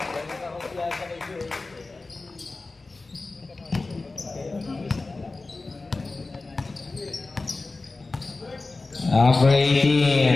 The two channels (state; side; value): quieter; right; 3.5 dB